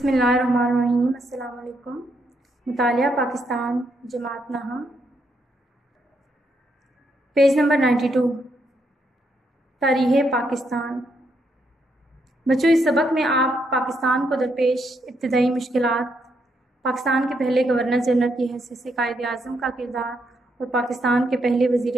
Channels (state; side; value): normal; both; correlation 0.77